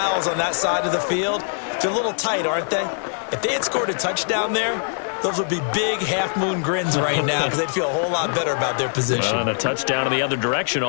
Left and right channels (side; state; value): right; silent; digital silence